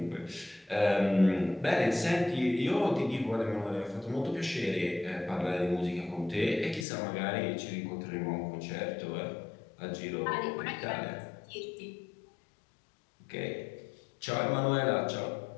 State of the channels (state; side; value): drops out; right; at 6.9 s